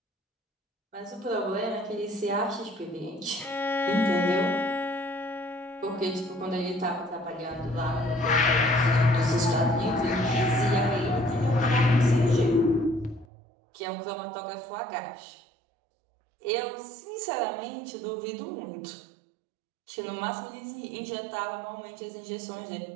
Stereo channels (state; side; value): drops out; left; at 13.2 s